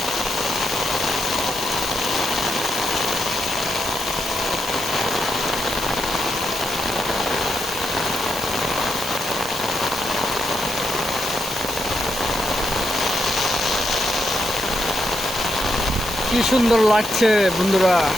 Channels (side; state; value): right; noise; hiss, 11 dB below the sound